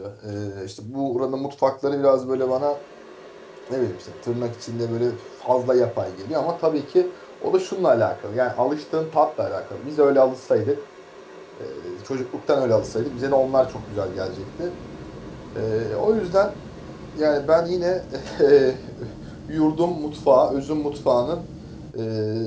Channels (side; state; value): both; identical; correlation 1.00